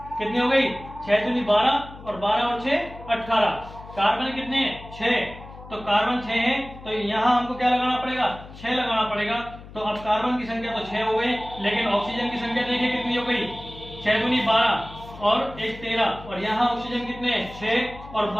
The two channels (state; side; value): noise; left; hum, 16 dB below the sound